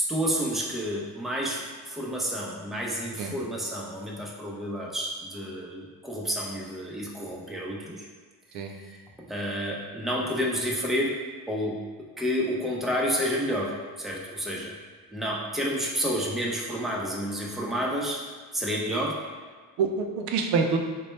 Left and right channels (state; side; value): normal; both; correlation 0.37